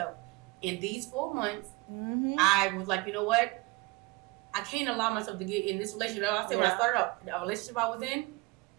In these 4 months, I was like, you know what? I can't allow myself to get in this relationship. I said when I started out, the relationship I was in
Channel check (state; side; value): quieter; left; 24.6 dB